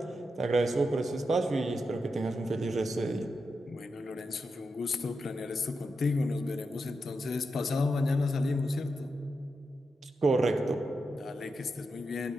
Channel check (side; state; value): both; normal; correlation 0.87